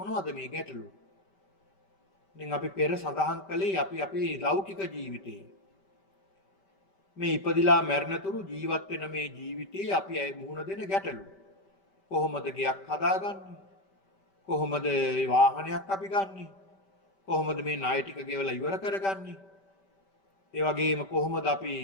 මේ ගැටලු? දැන් අපි පෙර සඳහන් කළේ අපි අපේ ලෞකික ජීවිතේ මේ ඉපදිලා මැරෙනතුරු ජීවත් වෙන මේ ජීවිතේ අපි මුහුණ දෙන ගැටලු. කොහොමද ගෙයක් හදාගන්නේ? කොහොමද වාහනයක් අපි ගන්නෙ? කොහොමද මේ ණය ටික ගෙවලා ඉවර කරගන්නේ? ඒ වගේම කොහොමද අපි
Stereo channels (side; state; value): right; late; 5.1 ms